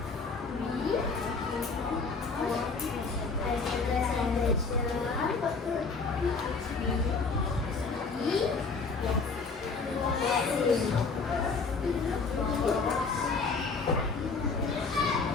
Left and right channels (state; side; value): quieter; right; 4.4 dB